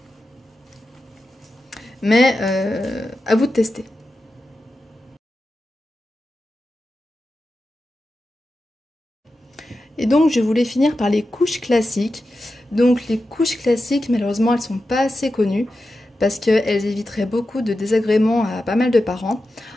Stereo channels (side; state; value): both; normal; correlation 0.91